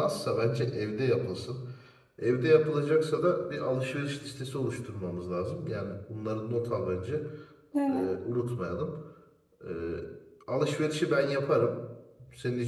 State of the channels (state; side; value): identical; both; correlation 1.00